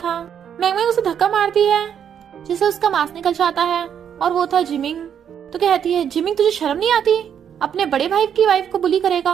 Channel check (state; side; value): quieter; left; 8.5 dB